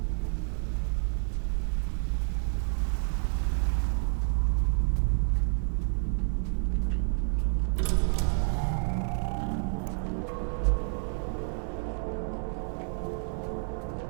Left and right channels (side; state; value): left; silent; 58 dB below the other